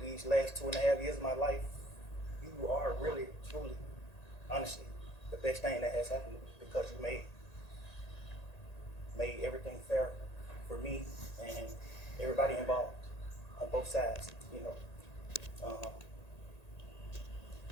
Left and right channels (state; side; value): late; right; 1.9 ms